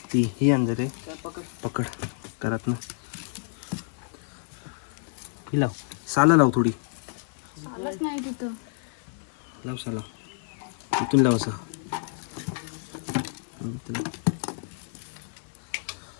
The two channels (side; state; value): right; silent; digital silence